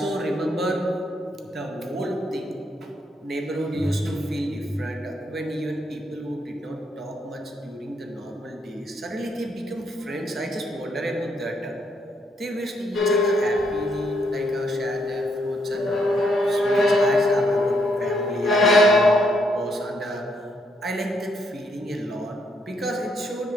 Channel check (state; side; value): normal; both; correlation 0.75